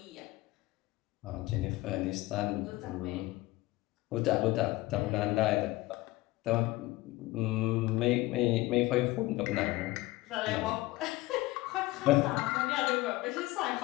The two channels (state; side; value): quieter; right; 19.3 dB